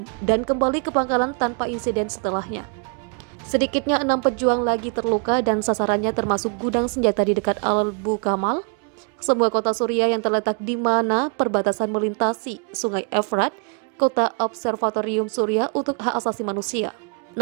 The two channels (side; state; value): left; quieter; 39.1 dB